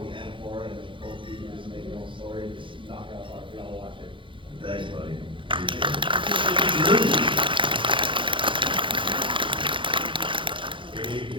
and horror, and both of you just make your own story, just knock it out of the park. We all watch it. Thanks, buddy.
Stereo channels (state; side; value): late; left; 0.24 ms